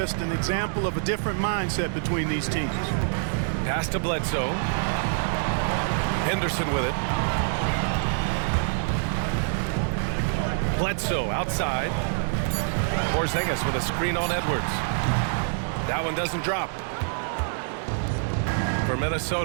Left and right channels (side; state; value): left; silent; digital silence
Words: an example of a different mindset between these teams. Pass to Bledsoe. Henderson with it. Bledsoe outside. Porzingis with a screen on Edwards. That one doesn't drop. For